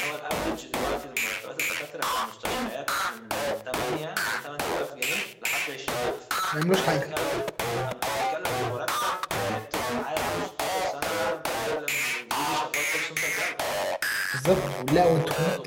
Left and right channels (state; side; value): identical; both; correlation 1.00